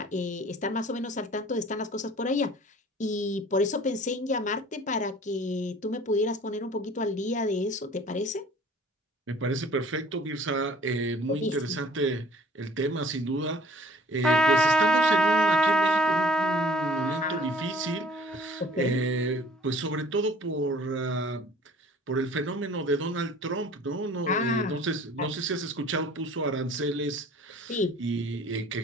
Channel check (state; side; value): normal; both; correlation 0.51